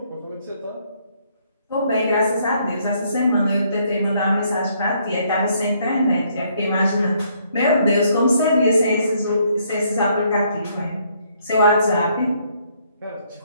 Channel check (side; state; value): both; inverted; correlation -0.69